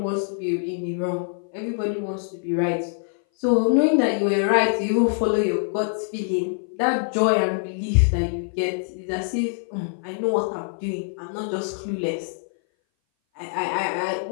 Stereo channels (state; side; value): silent; right; 59 dB below the other